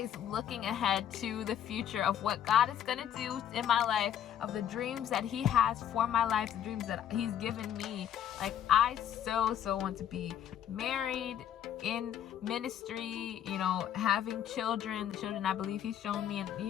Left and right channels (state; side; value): quieter; right; 10.0 dB